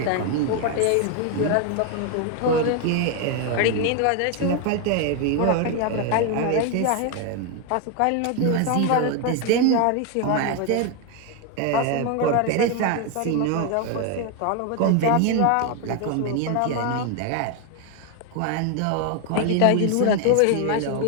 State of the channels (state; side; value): different; both; correlation 0.01